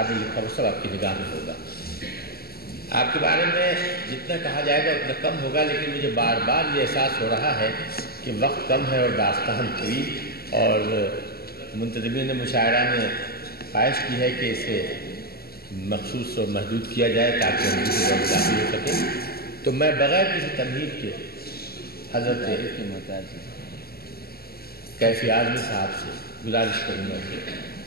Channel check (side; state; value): right; late; 0.45 ms